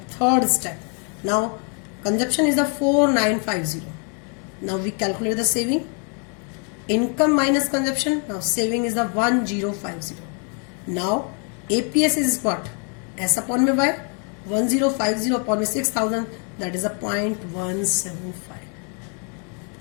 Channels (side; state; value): right; quieter; 40.0 dB